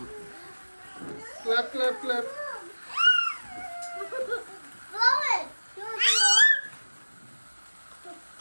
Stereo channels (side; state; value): both; inverted; correlation -1.00